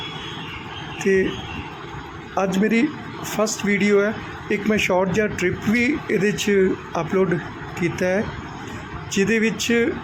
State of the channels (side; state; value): both; identical; correlation 1.00